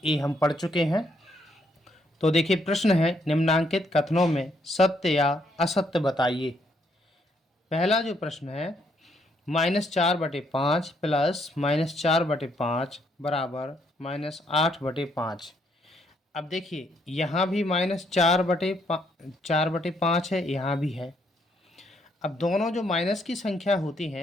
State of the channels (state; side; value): normal; both; correlation 0.72